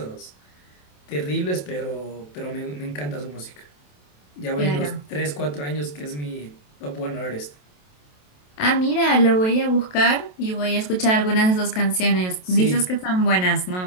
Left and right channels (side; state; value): right; late; 27 ms